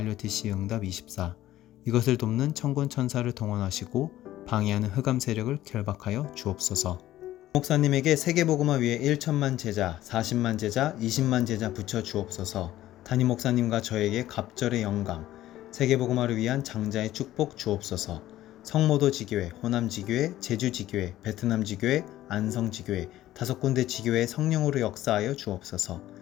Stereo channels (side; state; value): right; quieter; 14.3 dB